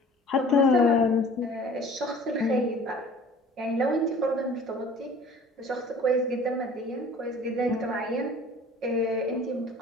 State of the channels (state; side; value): normal; both; correlation 0.47